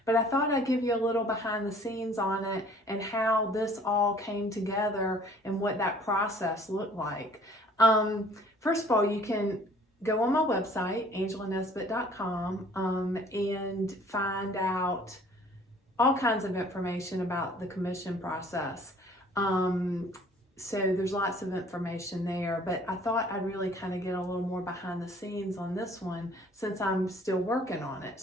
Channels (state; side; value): normal; both; correlation 0.54